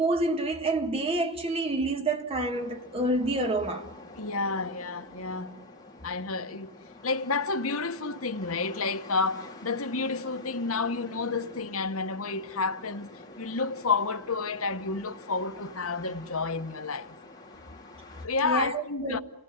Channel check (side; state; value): both; normal; correlation 0.00